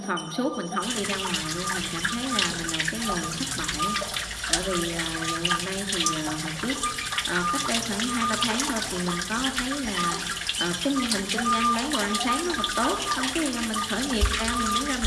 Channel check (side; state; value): both; identical; correlation 1.00